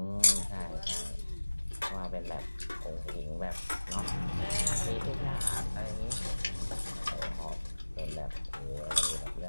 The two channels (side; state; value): both; inverted; correlation -1.00